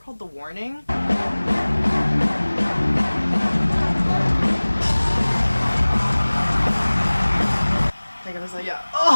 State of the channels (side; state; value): both; inverted; correlation -1.00